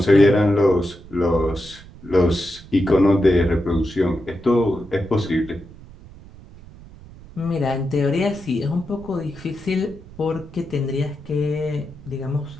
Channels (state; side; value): noise; right; rumble, 19 dB below the sound